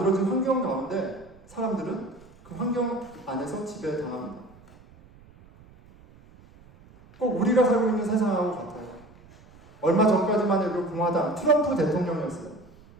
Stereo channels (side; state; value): right; noise; rumble, 25 dB below the sound